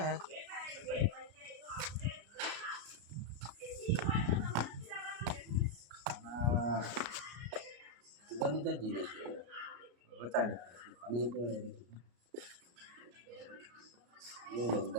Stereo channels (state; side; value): late; left; 34 ms